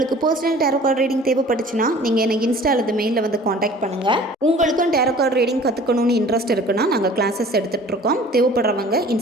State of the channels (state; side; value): normal; both; correlation 0.47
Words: பர்சனல் டேரோ கார்டு ரீடிங் தேவைப்பட்டுச்சுன்னா நீங்கள் எனக்கு இன்ஸ்டா அல்லது மெயிலில் வந்து காண்டாக்ட் பண்ணுங்கள். உங்களுக்கும் டேரோ கார்டு ரீடிங் கற்றுக்கணும்னு இன்ட்ரெஸ்ட் இருக்குன்னா நாங்கள் கிளாஸஸ் எடுத்துகிட்ருக்கோம். தேவைப்படுறவங்க